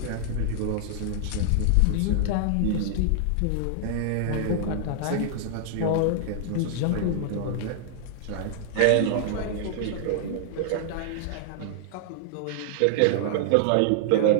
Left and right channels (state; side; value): different; both; correlation -0.01